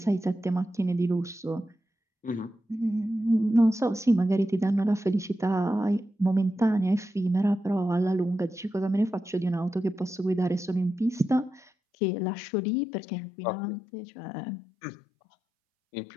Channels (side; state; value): right; drops out; at 11.7 s